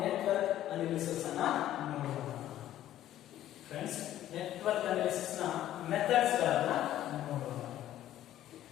ನೆಟ್ವರ್ಕ್ ಅನಾಲಿಸಿಸ್ ಅನ್ನ ನೋಡೋಣ ಫ್ರೆಂಡ್ಸ್. ನೆಟ್ವರ್ಕ್ ಅನಾಲಿಸಿಸ್ ನ ಮೆಥಡ್ಸ್ ಗಳನ್ನ ನೋಡೋಣ.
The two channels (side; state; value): right; quieter; 12.8 dB